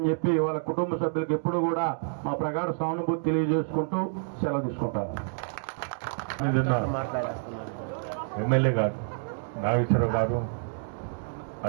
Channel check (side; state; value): left; silent; digital silence